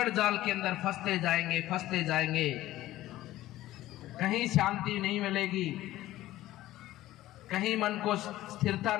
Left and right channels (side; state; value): right; quieter; 15.4 dB